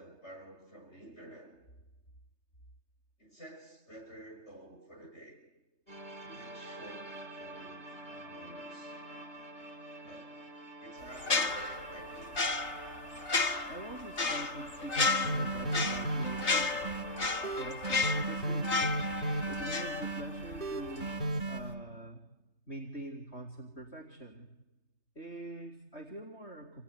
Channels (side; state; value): right; late; 3.3 ms